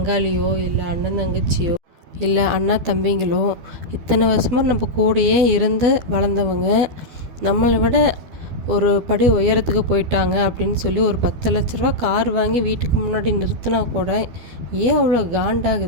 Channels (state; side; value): late; left; 12 ms